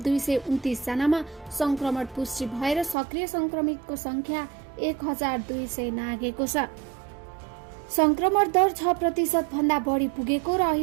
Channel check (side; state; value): left; drops out; at 3.0 s